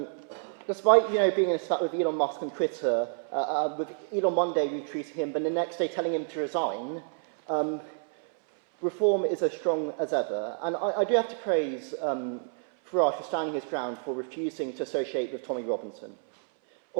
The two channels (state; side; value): silent; left; 59 dB below the other